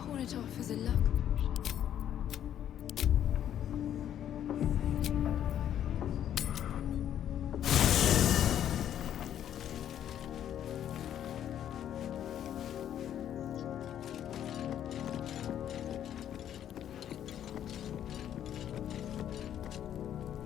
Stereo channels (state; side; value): quieter; right; 10.4 dB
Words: it off as a luck.